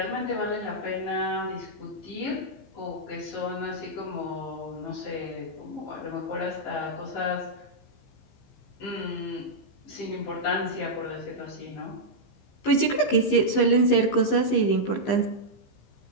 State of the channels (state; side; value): late; right; 15 ms